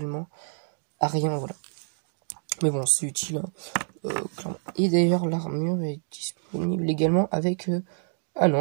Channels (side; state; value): left; silent; digital silence